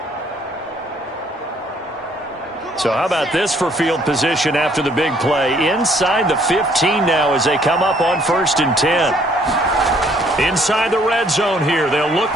So how about this for field position after the big play? Inside the 15 now as they come up on 1st and 10. Inside the red zone here. They'll look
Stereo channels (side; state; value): both; normal; correlation 0.63